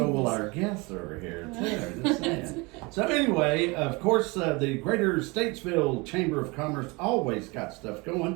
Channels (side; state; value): left; quieter; 26.4 dB